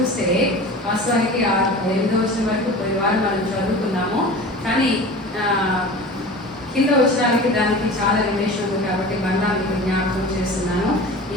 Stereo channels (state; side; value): normal; both; correlation 0.37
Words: వాస్తవానికి 8వ వచనం వరకు పోయిన వారం మనం చదువుకున్నాము. కానీ కింద వచనాలకి దానికి చాలా రిలేషన్ ఉంది కాబట్టి మళ్ళా మీకు జ్ఞాపకం చేస్తున్నాను.